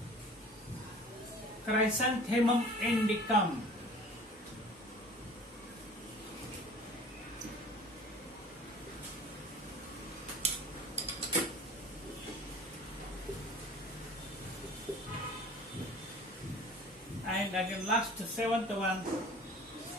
Chrysanthemum indicum. And again last seventh one,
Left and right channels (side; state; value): both; normal; correlation 0.45